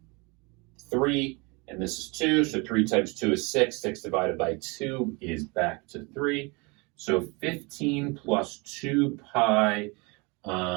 3, and this is 2, so 3 times 2 is 6. 6 divided by 2 is back to 3. So 15 plus 2 pi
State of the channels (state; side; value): quieter; left; 28.4 dB